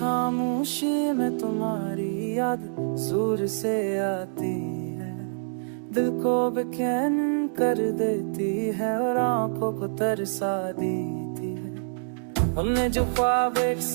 में तुम्हारी याद दूर से आती है, दिल को बेचैन कर देती है और आंखों को तरसा देती है। हमने जो ख्वाब एक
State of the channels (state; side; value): silent; left; 61 dB below the other